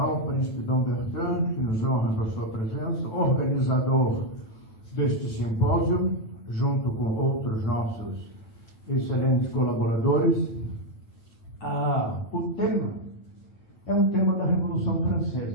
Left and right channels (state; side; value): late; right; 9.2 ms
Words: Príncipe Dom Bertrand, que nos honra com a sua presença, organizador deste simpósio, junto com outros nossos excelentes colaboradores. O tema é um tema da Revolução